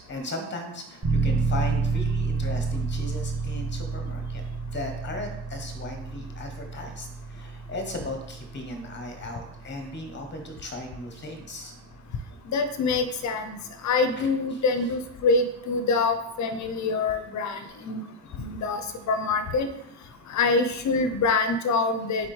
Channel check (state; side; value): normal; both; correlation 0.14